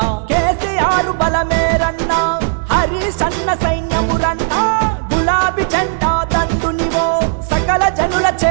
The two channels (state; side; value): silent; left; digital silence